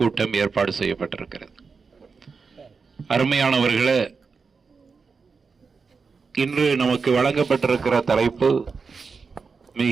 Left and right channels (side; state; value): left; quieter; 5.0 dB